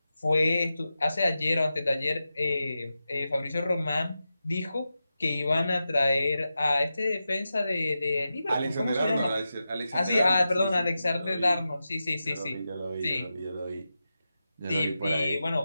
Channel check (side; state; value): both; inverted; correlation -0.91